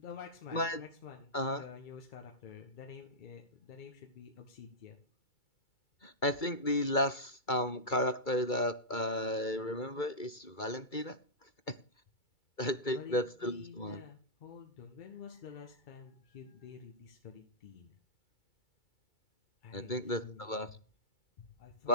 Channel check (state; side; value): late; right; 2.3 ms